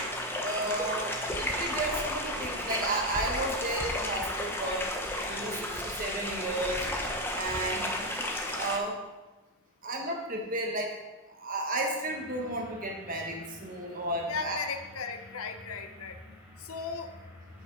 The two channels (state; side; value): normal; both; correlation 0.05